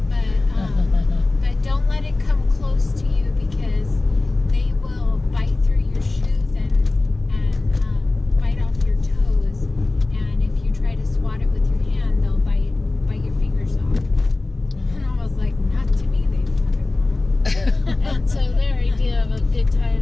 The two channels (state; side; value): quieter; right; 3.2 dB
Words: but don't let it come close to you because they will bite through your shoes and bite off your toes. And if you try to swat it with your hand, they'll bite your fingers off. And I was like, not to me, they fucking won't. and so their idea of a good time